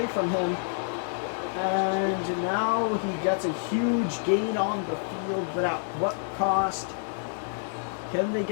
from him. And now he gets a huge gain on the field, but at what cost? Can they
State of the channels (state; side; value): silent; right; digital silence